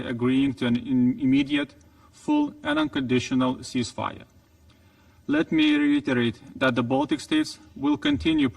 to an immediate, full and unconditional ceasefire. Let me reiterate that the Baltic states will continue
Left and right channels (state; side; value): identical; both; correlation 1.00